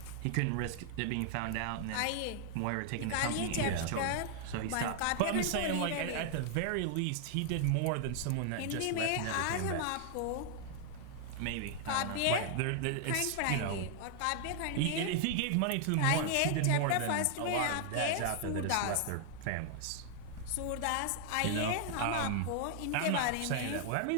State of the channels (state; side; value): different; both; correlation 0.00